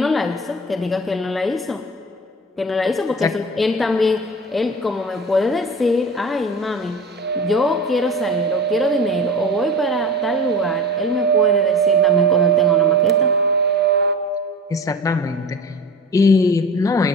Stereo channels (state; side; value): normal; both; correlation 0.35